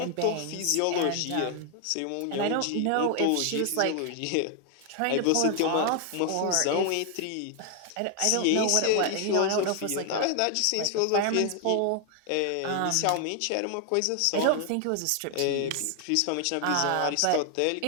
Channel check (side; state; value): both; different; correlation 0.00